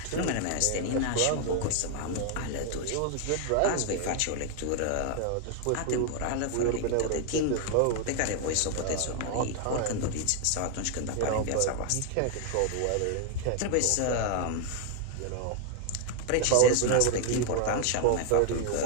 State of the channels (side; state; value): both; different; correlation 0.00